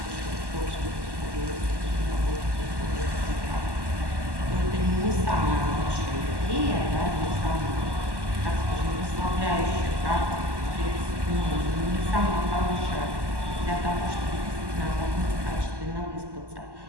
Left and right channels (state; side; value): late; left; 1.1 ms